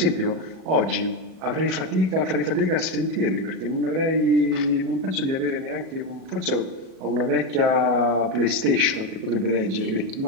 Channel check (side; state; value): left; late; 37 ms